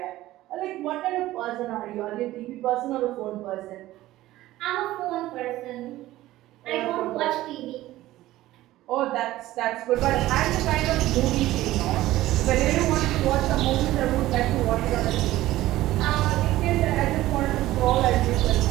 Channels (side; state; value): left; quieter; 15.9 dB